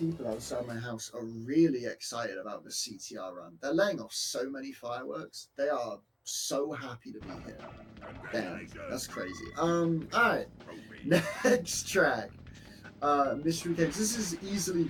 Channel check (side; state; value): both; identical; correlation 1.00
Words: outside my house are really excited about the CTR run. They're laying off so many fireworks. They are so happy to be here. Damn, that's crazy. Alright. Next track. Mystery Caves. This is easily